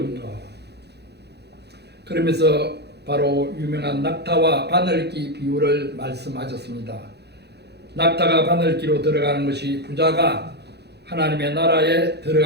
그러면서 바로 유명한 낙타와 바늘기 비유를 말씀하셨습니다. 낙타가 바늘기로 들어가는 것이 부자가 하나님의 나라에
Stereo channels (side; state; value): left; late; 0.48 ms